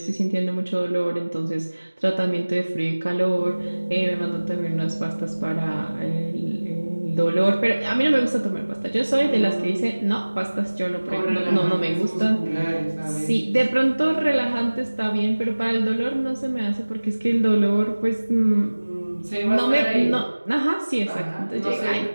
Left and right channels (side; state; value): both; inverted; correlation -1.00